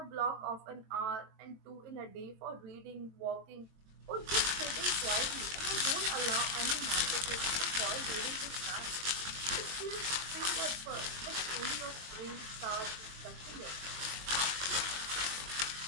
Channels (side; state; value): left; late; 22 ms